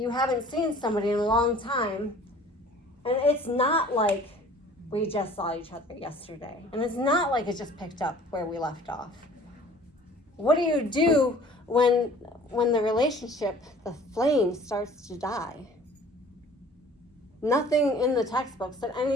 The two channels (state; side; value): normal; both; correlation 0.49